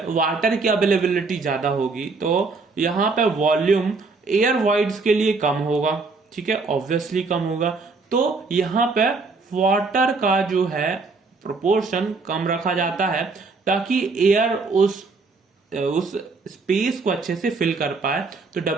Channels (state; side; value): quieter; left; 4.1 dB